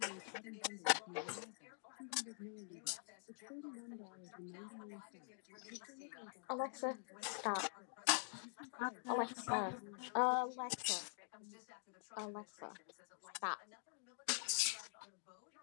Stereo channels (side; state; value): right; silent; digital silence